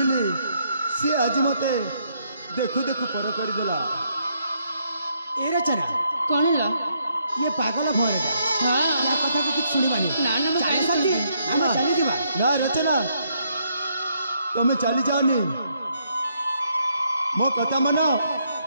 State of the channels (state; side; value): inverted; both; correlation -0.73